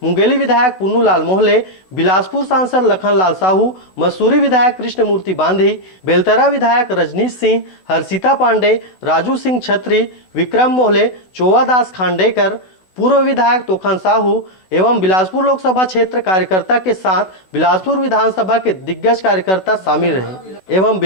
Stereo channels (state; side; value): late; right; 16 ms